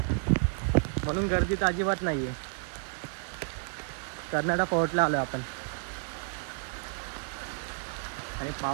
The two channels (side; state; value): left; silent; 57 dB below the other